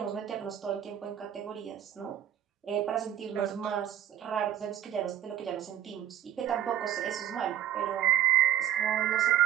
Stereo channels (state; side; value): quieter; left; 11.3 dB